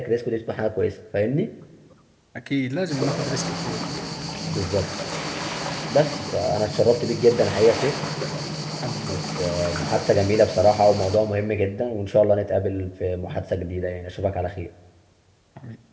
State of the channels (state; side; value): identical; both; correlation 1.00